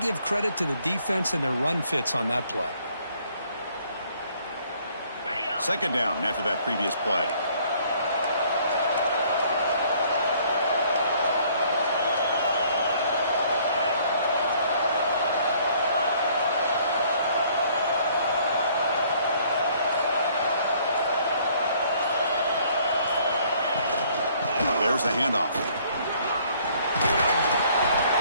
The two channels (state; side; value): inverted; both; correlation -0.61